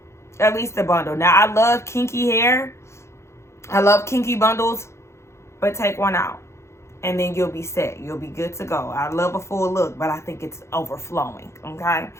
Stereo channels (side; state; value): right; late; 0.13 ms